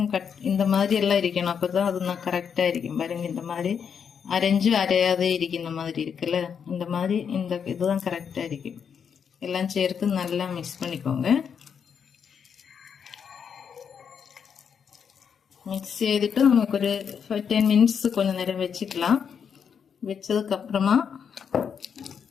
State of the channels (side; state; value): right; quieter; 7.1 dB